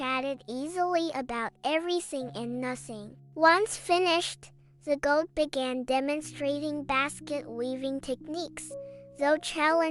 easily about everything and nothing. Once finished, the goat began demonstrating basket weaving techniques. Though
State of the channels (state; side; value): identical; both; correlation 1.00